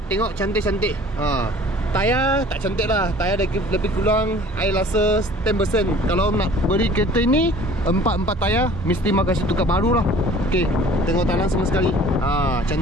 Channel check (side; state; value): both; normal; correlation 0.49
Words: tengok cantik-cantik. Tayar tak cantik lah. Tayar lebih kurang I rasa 10%. Kalau nak beli kereta ini 4 tayar mesti mak kasih tukar baru lah. Okay, tengok tangan sama sekali.